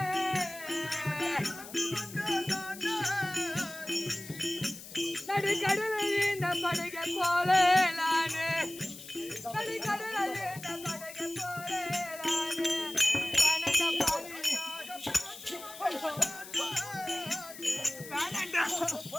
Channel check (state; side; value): noise; left; hiss, 14 dB below the sound